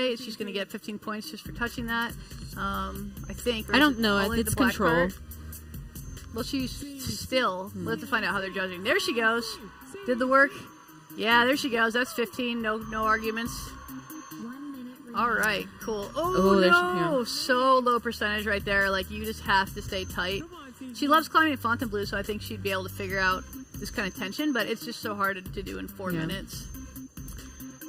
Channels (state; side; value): identical; both; correlation 1.00